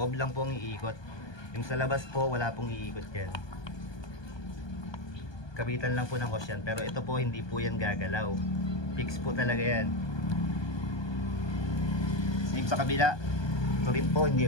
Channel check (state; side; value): late; right; 1.2 ms